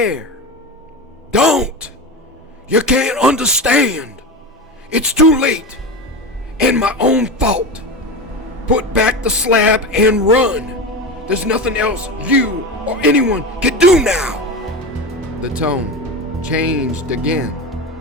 "Don't! You can't understand! It's too late, and my own fault. Put back the slab and run. There's nothing else you or anyone can do now." The tone changed again,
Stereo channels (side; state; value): both; normal; correlation 0.24